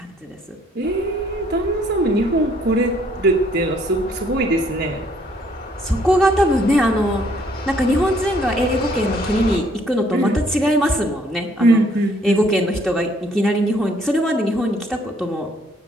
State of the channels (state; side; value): normal; both; correlation 0.65